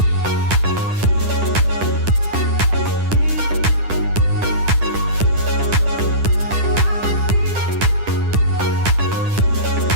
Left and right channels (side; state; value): left; late; 10 ms